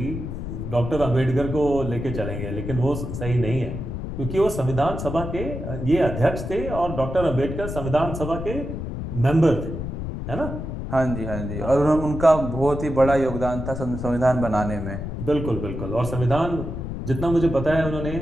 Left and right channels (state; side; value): noise; left; rumble, 6 dB below the sound